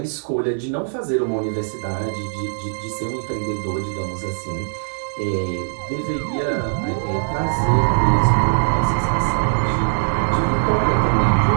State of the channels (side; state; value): left; silent; digital silence